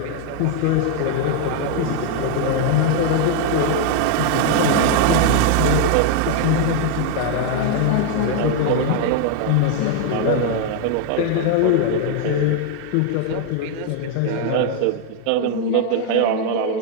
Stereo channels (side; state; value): both; different; correlation 0.00